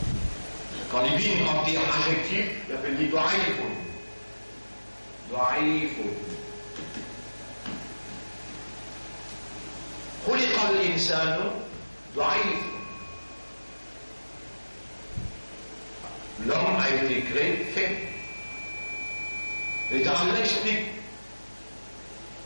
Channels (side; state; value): both; inverted; correlation -1.00